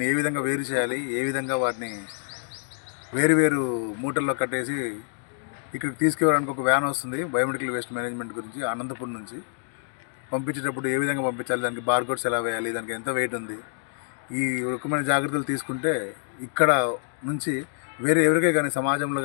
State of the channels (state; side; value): silent; right; digital silence